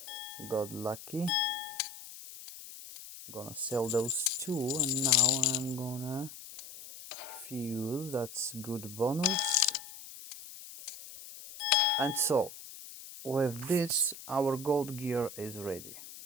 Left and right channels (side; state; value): left; noise; hiss, 14 dB below the sound